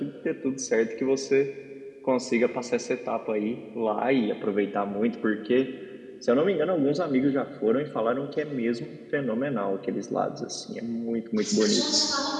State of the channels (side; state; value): both; identical; correlation 1.00